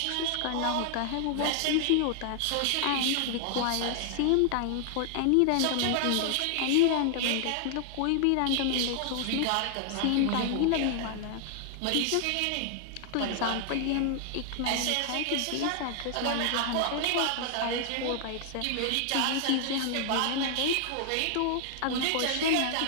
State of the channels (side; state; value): both; different; correlation -0.01